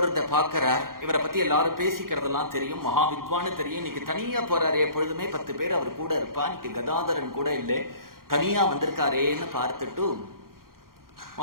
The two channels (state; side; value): late; left; 0.92 ms